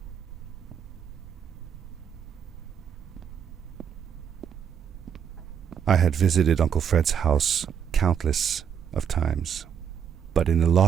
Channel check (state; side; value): quieter; left; 8.2 dB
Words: I had visited Uncle Fred's house countless of times, but in the